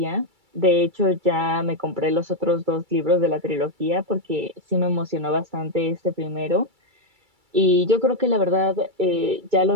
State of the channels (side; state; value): left; late; 2.3 ms